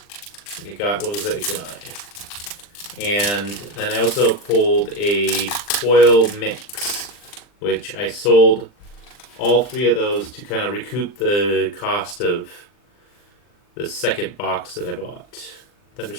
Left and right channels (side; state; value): right; late; 40 ms